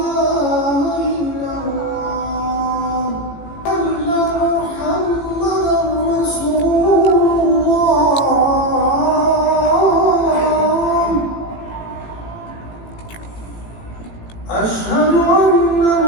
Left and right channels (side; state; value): right; late; 18 ms